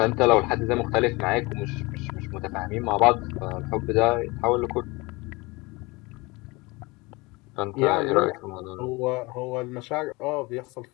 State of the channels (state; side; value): quieter; right; 24.3 dB